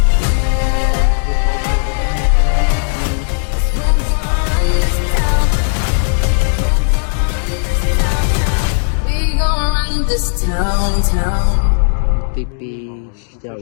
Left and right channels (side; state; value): right; silent; digital silence